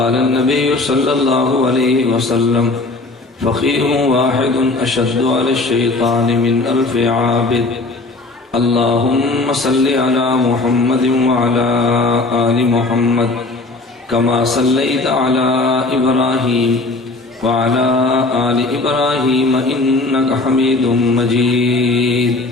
النبي صلى الله عليه وسلم فقيه واحد أشد على الشيطان من 1000 عابد اللهم صل على محمد وعلى آل محمد كما صليت على إبراهيم وعلى آل إبراهيم إنك حميد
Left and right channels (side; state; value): right; quieter; 3.2 dB